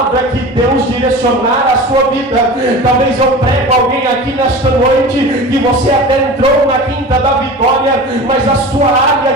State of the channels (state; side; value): normal; both; correlation 0.34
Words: que Deus direcionar a sua vida. Talvez eu prego alguém aqui nesta noite que você até entrou na Quinta da Vitória, mas a sua área